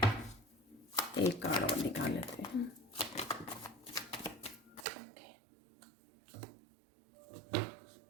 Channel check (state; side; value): drops out; left; at 4.9 s